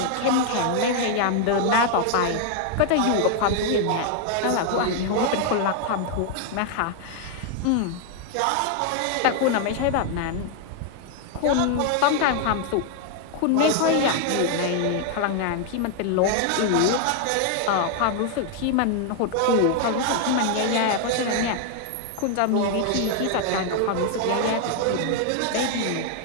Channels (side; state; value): both; different; correlation 0.00